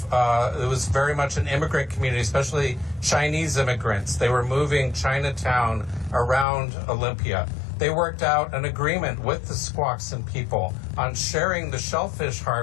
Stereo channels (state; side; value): drops out; right; at 6.5 s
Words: was very much an immigrant community, especially Chinese immigrants. They were moving Chinatown around Olympia. They worked out an agreement with the Squaxin people on sharing the shellfish